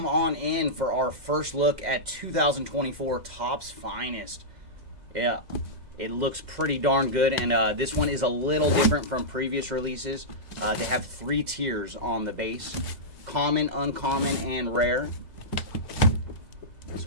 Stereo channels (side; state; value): left; late; 2.1 ms